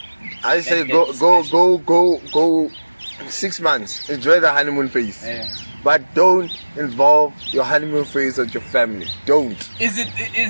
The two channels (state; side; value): inverted; both; correlation -1.00